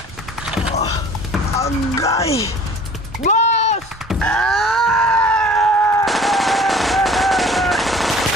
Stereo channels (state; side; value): normal; both; correlation 0.49